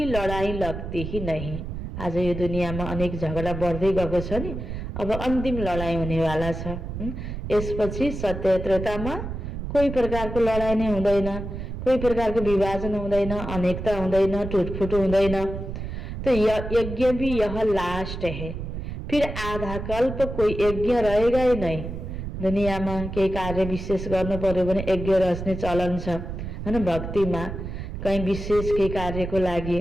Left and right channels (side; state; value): right; noise; rumble, 7 dB below the sound